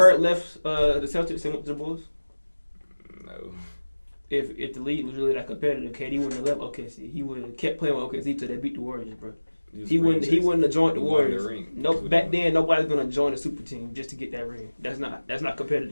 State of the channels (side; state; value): both; inverted; correlation -1.00